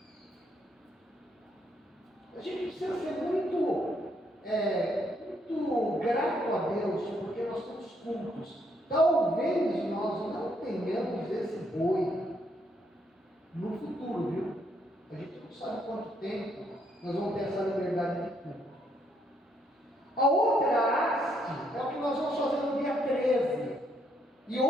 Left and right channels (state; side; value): normal; both; correlation 0.73